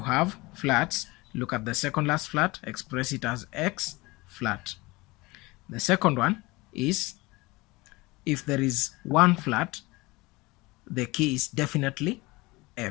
have flats, look at the second last flat, express it as X flat. The second one is if there is one flat, the key is definitely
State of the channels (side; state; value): right; quieter; 22.6 dB